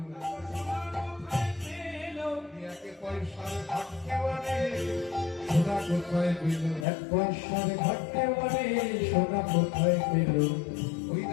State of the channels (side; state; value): right; drops out; at 6.9 s